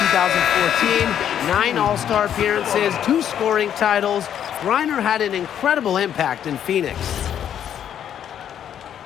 2014, 9 All-Star appearances, 2 scoring titles. Griner had an incredible impact in Phoenix.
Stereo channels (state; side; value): quieter; right; 9.6 dB